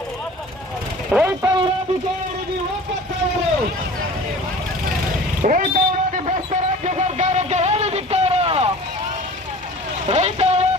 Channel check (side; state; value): both; normal; correlation 0.42